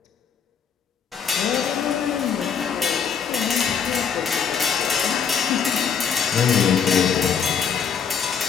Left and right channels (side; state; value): right; quieter; 7.0 dB